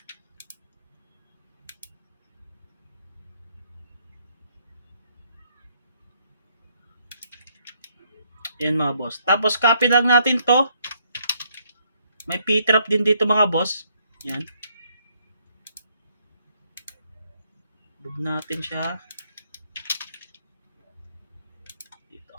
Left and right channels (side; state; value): both; inverted; correlation -0.70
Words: Yan mga boss. Tapos copy lang natin to. May P-trap din dito mga boss. Yan. Move natin siya. Dito.